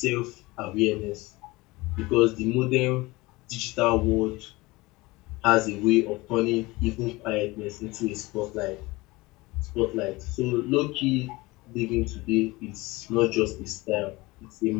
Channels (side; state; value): right; quieter; 21.9 dB